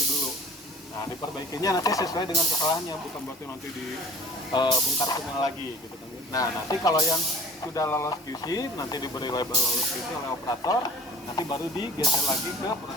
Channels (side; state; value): both; normal; correlation 0.45